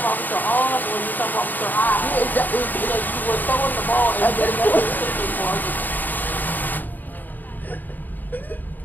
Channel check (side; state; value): right; late; 0.088 ms